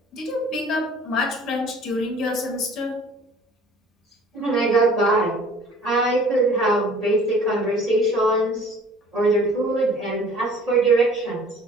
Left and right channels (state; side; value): normal; both; correlation 0.51